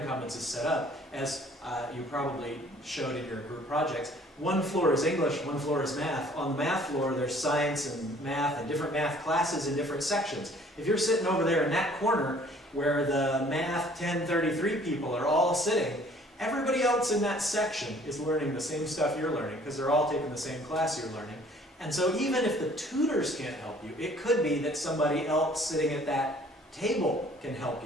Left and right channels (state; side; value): normal; both; correlation 0.56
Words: Commons is set up, as you probably showed in your group projects, one floor is English, one floor is math. On the math floor, there's science and math and different math classes in different sections. If you're sitting over there in that corner where the Math 1033 people are all sitting, everybody else in that section is learning the same stuff you're learning because they're all taking the same class you're learning. And so even if the tutors can't help you, it could be that somebody else sitting at that table can help